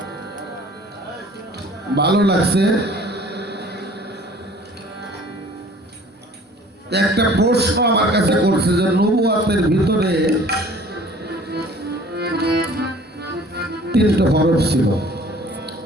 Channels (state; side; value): normal; both; correlation 0.50